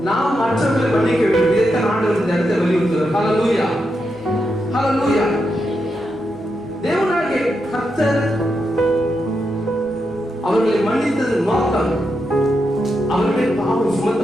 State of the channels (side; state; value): both; normal; correlation 0.85